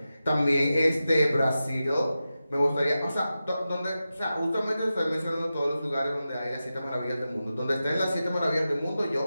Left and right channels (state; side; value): inverted; both; correlation -0.93